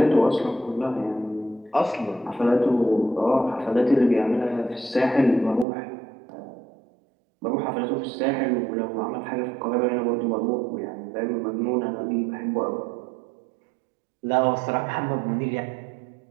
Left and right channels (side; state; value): left; drops out; at 5.7 s